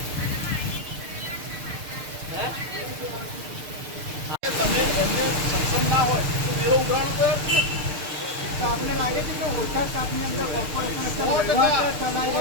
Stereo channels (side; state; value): left; late; 6.7 ms